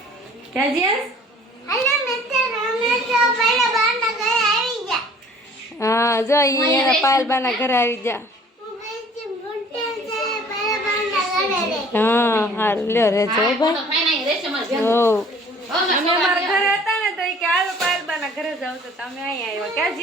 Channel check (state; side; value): normal; both; correlation 0.52